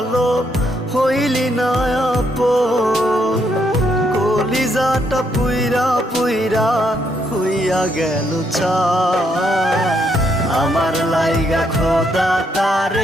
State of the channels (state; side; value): normal; both; correlation 0.75